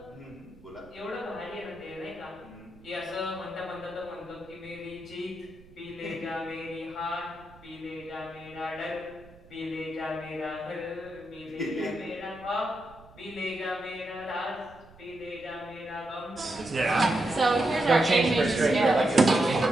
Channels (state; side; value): noise; right; rumble, 23 dB below the sound